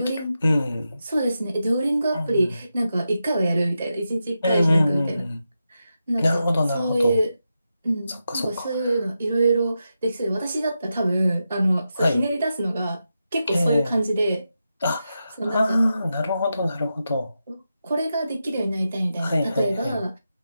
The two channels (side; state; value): both; inverted; correlation -0.88